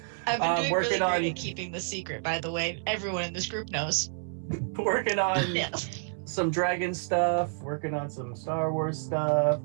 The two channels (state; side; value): silent; left; 58 dB below the other